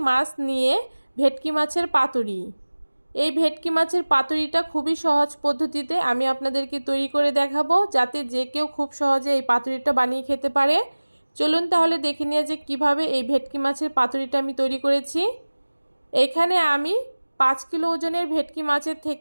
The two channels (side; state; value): both; inverted; correlation -1.00